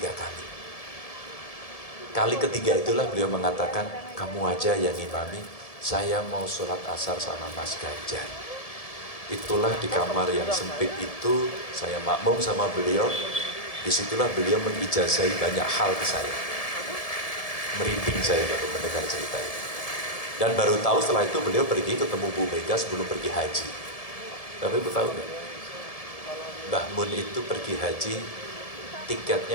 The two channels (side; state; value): right; late; 1.7 ms